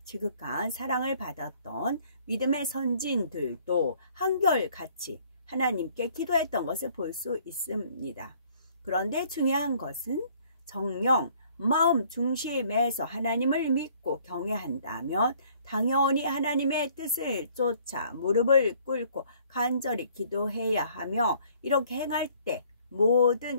지극한 사랑을 받았던 믿음의 선진들도 한결같이 하나님께 기도했던 것을 볼 수 있습니다. 그런데 중요한 것은 정령 마음 중심에서 하나님을 믿고 경외한다면 당연히 하나님의 뜻을 쫓아 무릎을 꿇고 간절히 기도해야 하며 이렇게 행할 때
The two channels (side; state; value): both; inverted; correlation -0.59